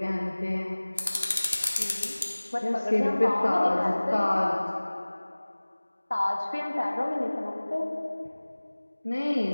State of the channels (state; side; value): inverted; both; correlation -1.00